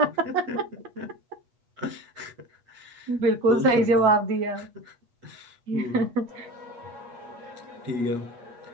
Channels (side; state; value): left; late; 8.3 ms